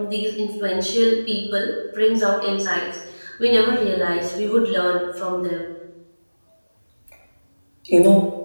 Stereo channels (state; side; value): inverted; both; correlation -1.00